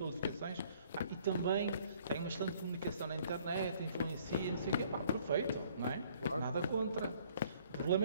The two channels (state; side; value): inverted; both; correlation -0.60